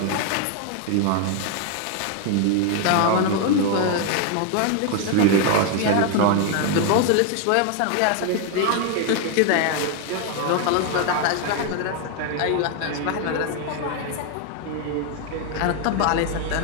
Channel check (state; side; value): different; both; correlation 0.01